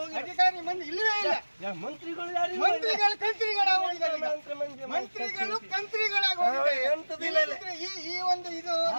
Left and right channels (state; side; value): inverted; both; correlation -1.00